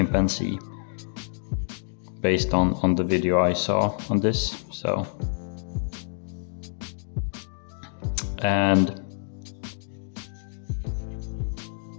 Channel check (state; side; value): silent; right; 60 dB below the other